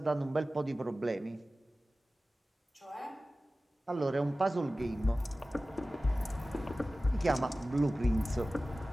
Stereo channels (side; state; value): both; normal; correlation 0.96